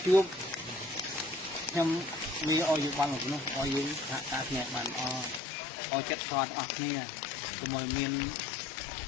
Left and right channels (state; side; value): drops out; right; at 5.4 s